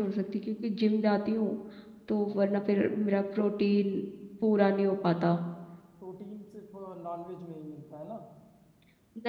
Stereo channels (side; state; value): both; identical; correlation 1.00